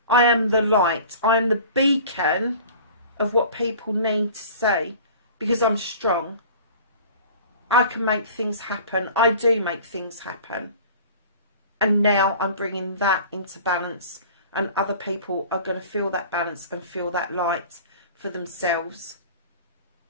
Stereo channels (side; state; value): both; inverted; correlation -0.43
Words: I am the light. I am the beacon of what people need to see. Because I'm strong. I can make things happen. I do make things happen. And now I'm bringing that into balance, and other people are going to feel that balance and feel that light for themselves.